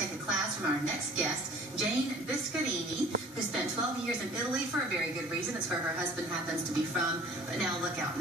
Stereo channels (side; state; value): both; normal; correlation 0.49